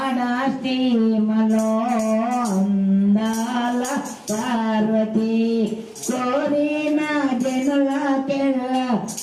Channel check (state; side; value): identical; both; correlation 1.00